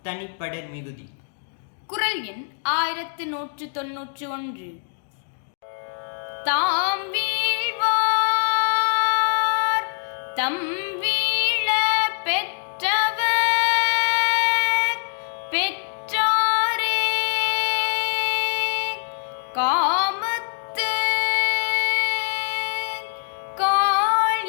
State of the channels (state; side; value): silent; right; 62 dB below the other